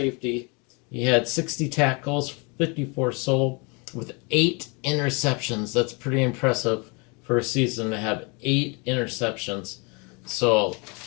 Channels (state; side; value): quieter; right; 31.2 dB